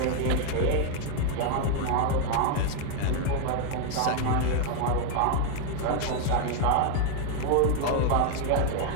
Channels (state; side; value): different; both; correlation 0.01